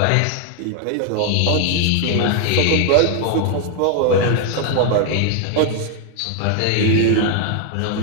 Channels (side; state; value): both; different; correlation 0.00